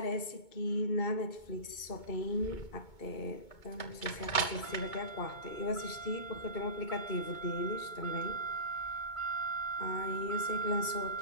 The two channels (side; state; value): right; late; 2.2 ms